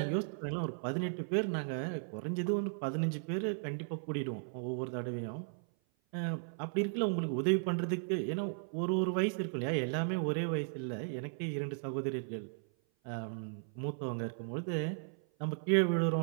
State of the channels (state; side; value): silent; left; 54 dB below the other